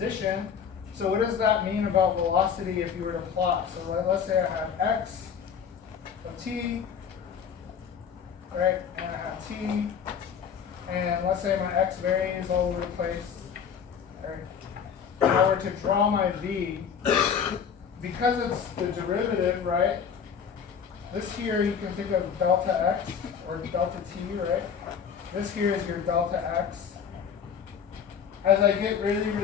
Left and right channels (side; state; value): right; quieter; 7.2 dB